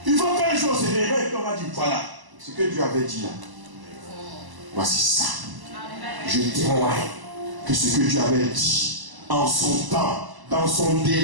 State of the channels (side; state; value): left; late; 1.0 ms